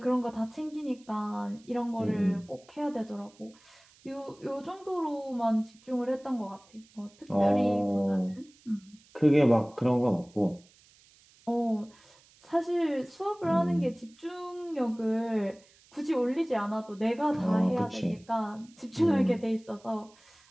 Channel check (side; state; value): right; noise; hiss, 28 dB below the sound